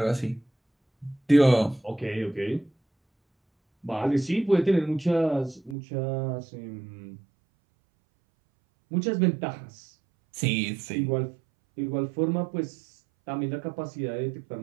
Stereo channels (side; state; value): left; drops out; at 5.8 s